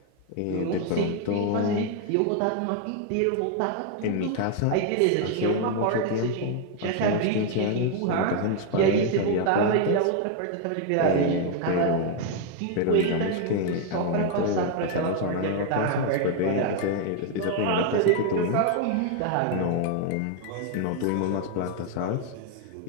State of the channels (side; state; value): both; different; correlation 0.00